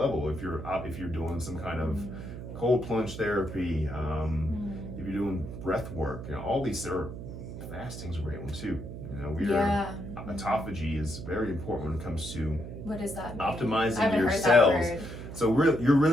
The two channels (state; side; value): noise; right; hum, 9 dB below the sound